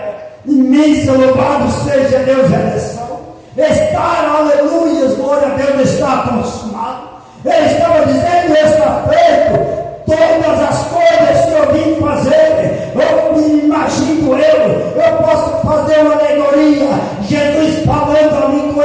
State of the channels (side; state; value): both; identical; correlation 1.00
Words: imensa, louvado seja Deus, redenção. Estar, aleluia, glória a Deus, está consumado. Ele estava dizendo, está feito. Todas as coisas que eu vim fazer, eu me imagino eu posso fazer uma alegoria, Jesus falando ali com